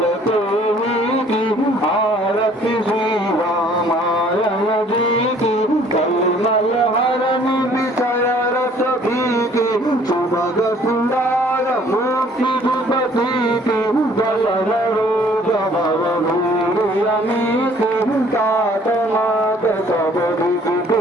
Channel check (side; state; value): both; normal; correlation 0.57